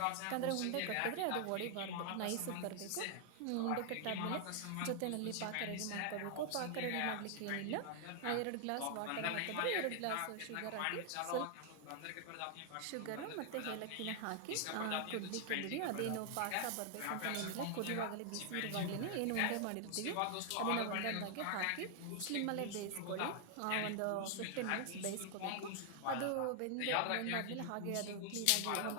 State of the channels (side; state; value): both; different; correlation 0.00